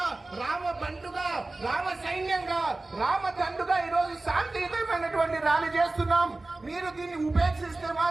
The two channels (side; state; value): left; quieter; 3.1 dB